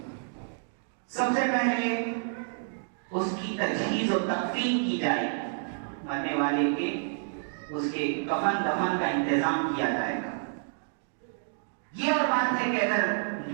سب سے پہلے اس کی تجہیز و تکفین کی جائے، مرنے والے کے اس کے کفن دفن کا انتظام کیا جائے گا۔ یہ اور بات ہے کہ اگر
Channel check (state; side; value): silent; left; digital silence